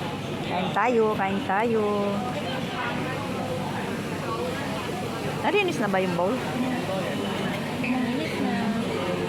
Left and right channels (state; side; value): identical; both; correlation 1.00